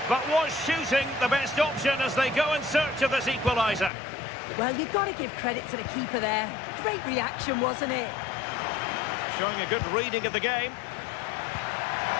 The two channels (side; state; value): right; drops out; at 3.9 s